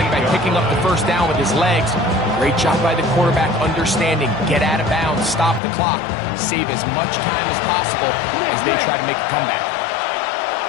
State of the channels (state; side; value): drops out; right; at 5.6 s